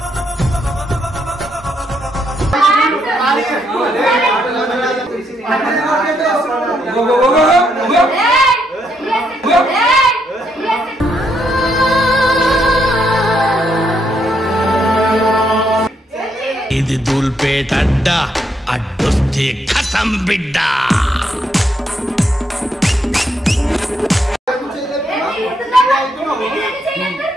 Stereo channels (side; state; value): both; normal; correlation 0.76